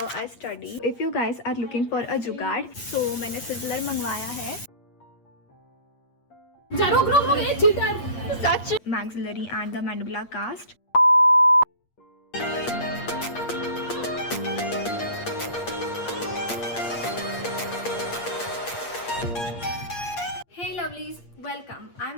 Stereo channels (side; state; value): right; late; 8.5 ms